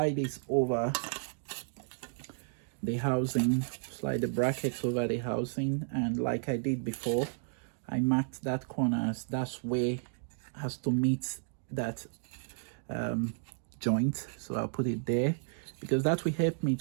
this over the housing, slide the brackets over the housing, and like I did before, I marked that corner as that's where has to meet that joint. So I'll put it there because that will help me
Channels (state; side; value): silent; left; digital silence